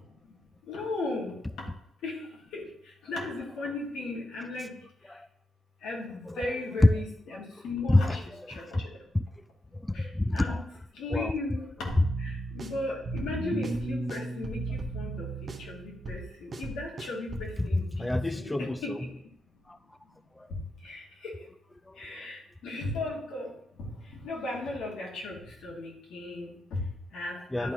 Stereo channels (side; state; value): both; normal; correlation 0.87